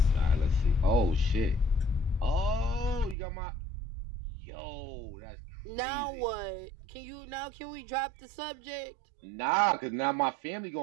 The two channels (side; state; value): left; drops out; at 3.2 s